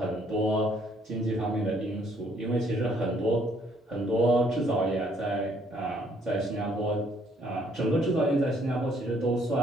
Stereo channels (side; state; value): both; normal; correlation 0.65